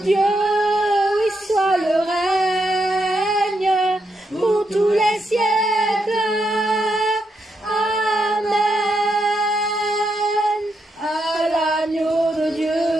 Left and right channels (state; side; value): normal; both; correlation 0.81